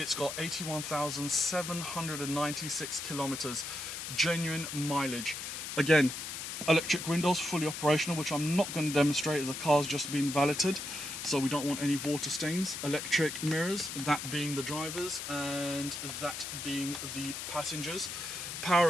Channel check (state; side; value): noise; left; hiss, 6 dB below the sound